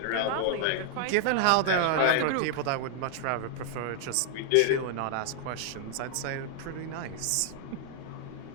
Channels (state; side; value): different; both; correlation 0.00